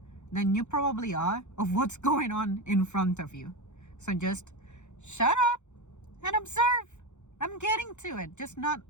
than you probably are of what's going on in front of you. So just shut up and observe. I'm getting to it, just not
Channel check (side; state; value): right; late; 0.84 ms